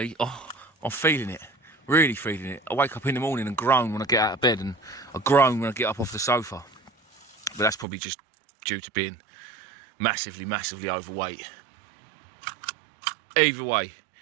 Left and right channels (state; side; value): drops out; left; at 7.9 s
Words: I'm feeling it. Really feeling it. I wake up in the morning and groan when I get out of bed, and I groan when I get up off the sofa. But that's probably just due to being massively overweight. Either way,